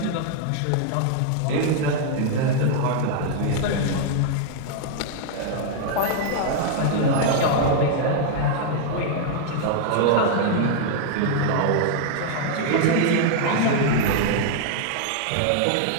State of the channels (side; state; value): both; different; correlation -0.01